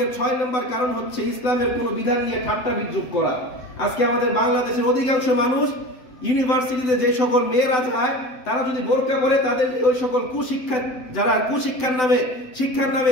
6 নম্বর কারণ হচ্ছে ইসলামের কোনো বিধান নিয়ে ঠাট্টা বিদ্রূপ করা। আজকে আমাদের বাংলাদেশের অধিকাংশ মানুষ ইউনিভার্সিটিতে যে সকল মেয়েরা যায়, তারা যদি বোরকা পরে, তাদের ওই সকল কুশিক্ষা, যারা শিক্ষার নামে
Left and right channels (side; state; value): right; late; 7.9 ms